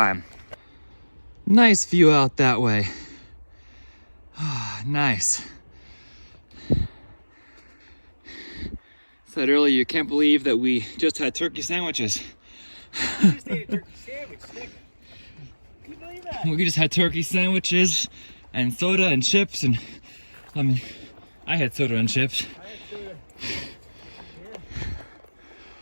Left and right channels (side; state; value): both; inverted; correlation -1.00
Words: Nice view out that way. Ah, nice. Said earlier, you can't believe that we just had turkey sandwiches. You just ate a turkey sandwich, Nick. Can you believe that? We just had turkey sandwiches and soda and chips, and I mean, I had soda and chips.